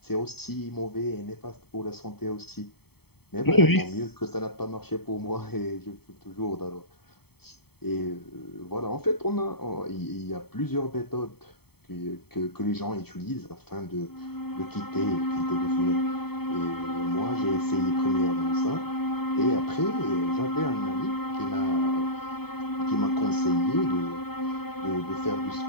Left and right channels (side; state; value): right; late; 0.96 ms